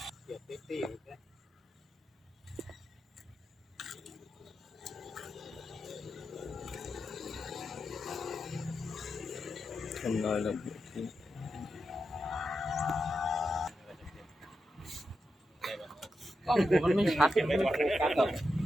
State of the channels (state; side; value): normal; both; correlation 0.87